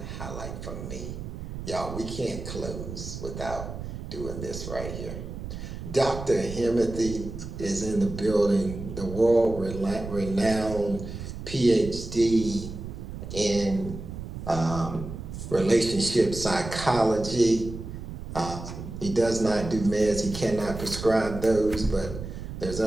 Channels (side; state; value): right; noise; rumble, 8 dB below the sound